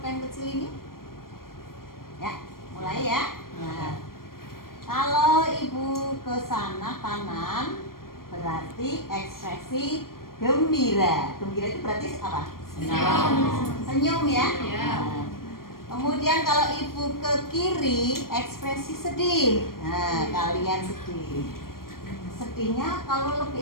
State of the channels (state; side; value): late; right; 0.92 ms